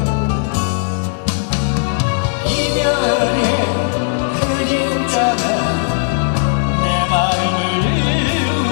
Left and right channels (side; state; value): right; silent; 68 dB below the other